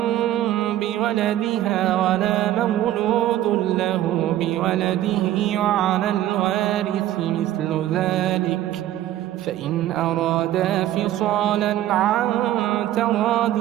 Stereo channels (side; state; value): left; quieter; 13.3 dB